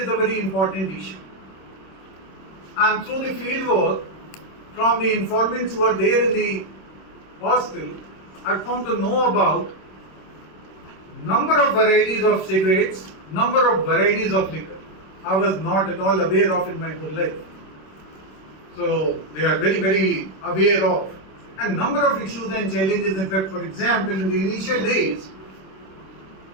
is a very important issue. And through the field work, from the informants who are there in the hostel, I come to know about number of varieties of cigarettes, number of varieties of liquor. I was not at all aware of in my whole life. So they are very, very aware of. And number of issues and challenges. In fact, for example, in the initial days,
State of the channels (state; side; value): late; right; 26 ms